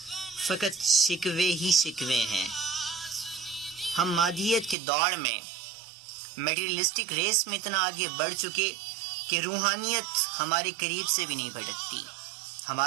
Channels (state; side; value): drops out; left; at 4.8 s